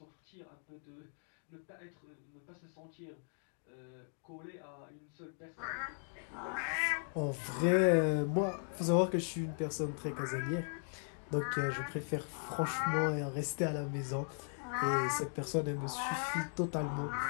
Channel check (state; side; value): silent; right; 53 dB below the other